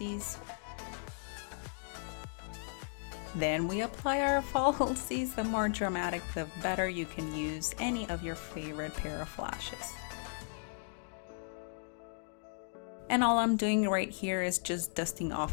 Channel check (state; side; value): silent; right; digital silence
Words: Then we apply our falsies. The more dramatic, the better. You can use any of your favorite pair of lashes. And all I'm doing right here is just dusting